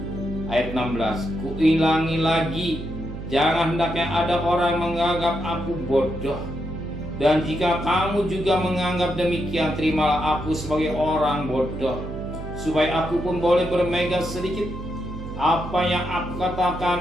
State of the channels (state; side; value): noise; right; hum, 9 dB below the sound